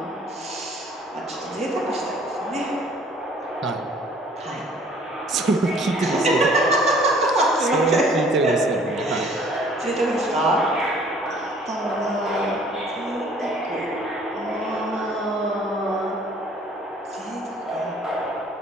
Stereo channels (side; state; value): both; normal; correlation 0.55